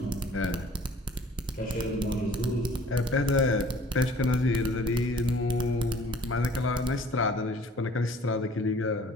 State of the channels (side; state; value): both; normal; correlation 0.52